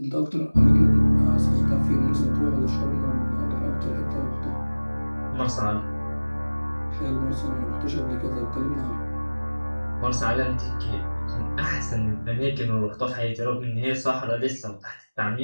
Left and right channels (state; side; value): inverted; both; correlation -1.00